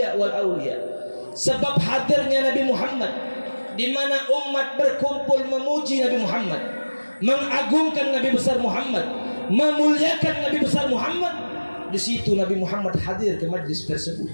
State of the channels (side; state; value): both; inverted; correlation -1.00